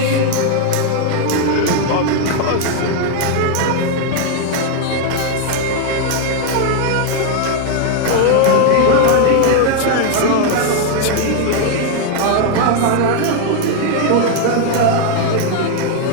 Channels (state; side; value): different; both; correlation 0.00